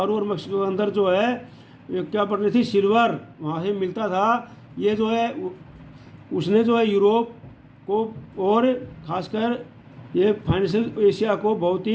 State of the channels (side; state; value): both; identical; correlation 1.00